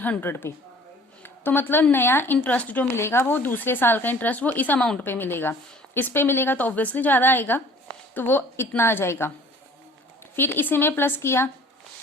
पे। तो मतलब नया इंटरेस्ट जो मिलेगा वो दूसरे साल का इंटरेस्ट वो इस अमाउंट पे मिलेगा, इस पे मिलेगा तो ऑब्वियसली ज्यादा आएगा, तो वो इतना आ जाएगा। फिर इसी में प्लस किया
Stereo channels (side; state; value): both; normal; correlation 0.50